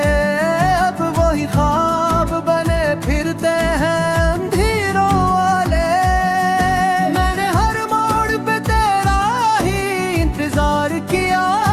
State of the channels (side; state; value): both; identical; correlation 1.00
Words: अब वही ख्वाब बने फिरते हैं अंधेरों वाले। मैंने हर मोड़ पे तेरा ही इंतजार किया,